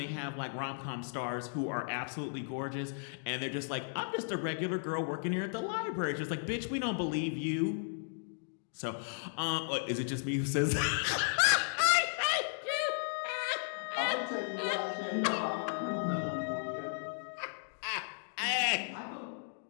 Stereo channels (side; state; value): right; silent; digital silence